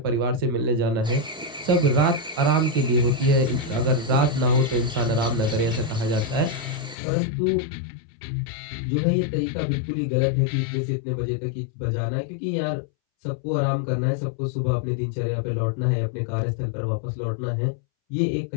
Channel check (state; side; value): drops out; right; at 7.0 s